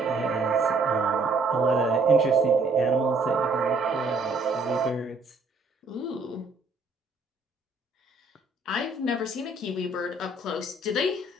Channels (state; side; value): quieter; left; 3.4 dB